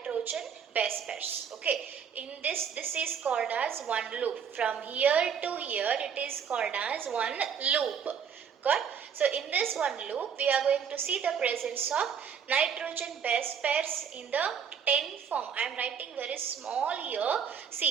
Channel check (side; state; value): left; quieter; 7.3 dB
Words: base pairs. Okay, in this is called as one loop. From here to here it is called as one loop. Got, so in this one loop we are going to see the presence of nitrogen base pairs in the 10 form. I am writing very small here.